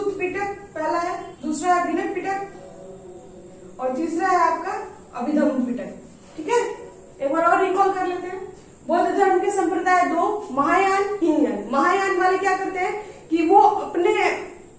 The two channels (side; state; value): both; identical; correlation 1.00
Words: पिटक पहला है, दूसरा है विनय पिटक और तीसरा है आपका अभिधम्म पिटक। ठीक है, एक बार और रिकॉल कर लेते हैं। बौद्ध धर्म के संप्रदाय 2, महायान, हीनयान। महायान वाले क्या करते हैं कि वो अपने